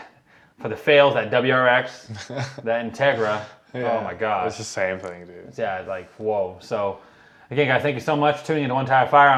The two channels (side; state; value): both; identical; correlation 1.00